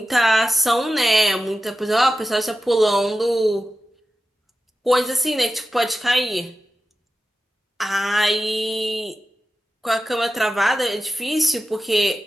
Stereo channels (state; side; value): normal; both; correlation 0.92